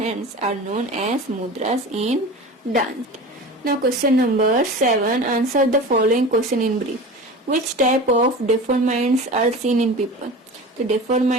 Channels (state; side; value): normal; both; correlation 0.33